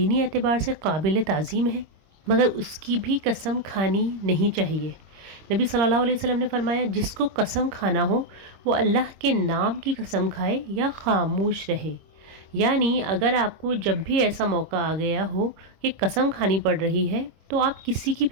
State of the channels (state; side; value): late; left; 26 ms